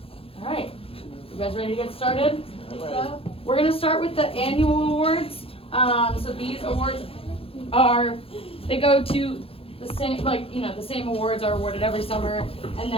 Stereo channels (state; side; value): late; right; 0.27 ms